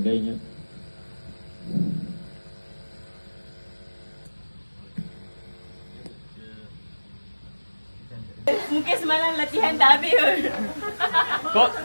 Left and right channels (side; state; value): both; inverted; correlation -1.00